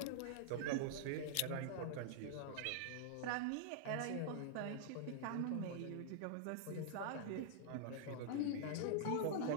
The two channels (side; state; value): both; different; correlation -0.01